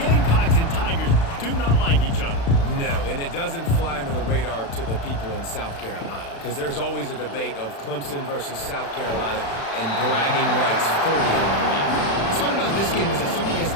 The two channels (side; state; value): right; late; 36 ms